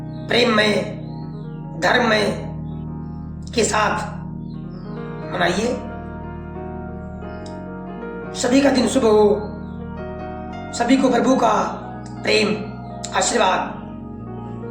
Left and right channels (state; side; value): identical; both; correlation 1.00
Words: प्रेम में, धर्म में के साथ मनाइए। सभी का दिन शुभ हो, सभी को प्रभु का प्रेम आशीर्वाद